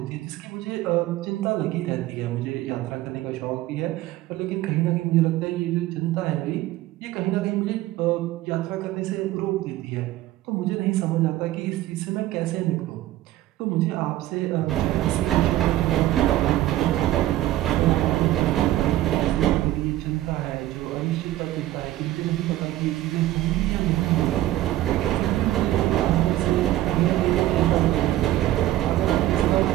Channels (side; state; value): left; quieter; 14.9 dB